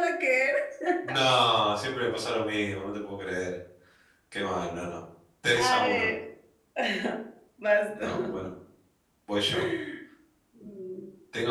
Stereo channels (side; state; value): both; identical; correlation 1.00